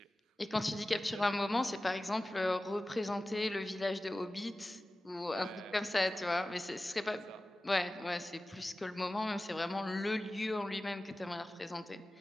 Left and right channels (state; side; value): normal; both; correlation 0.96